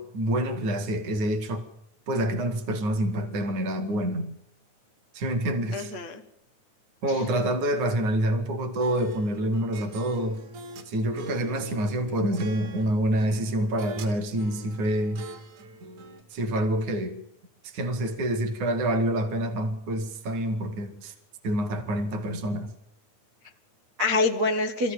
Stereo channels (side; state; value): left; late; 9.6 ms